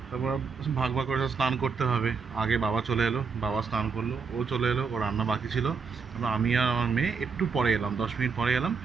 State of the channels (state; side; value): quieter; left; 5.4 dB